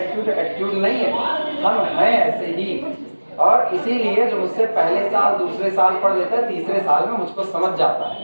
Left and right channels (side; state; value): both; inverted; correlation -1.00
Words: नहीं है, हम हैं ऐसे ही। और इसीलिए जो मुझसे पहले साल दूसरे साल पढ़ लेता है, तीसरे साल में मुझको समझ जाता